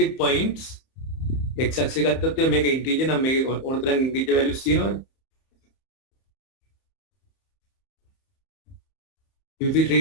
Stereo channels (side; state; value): right; late; 30 ms